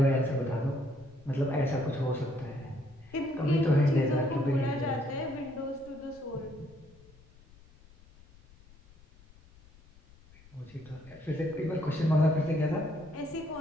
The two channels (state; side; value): noise; left; rumble, 25 dB below the sound